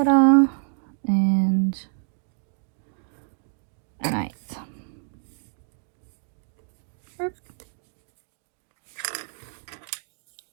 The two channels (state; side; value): silent; left; digital silence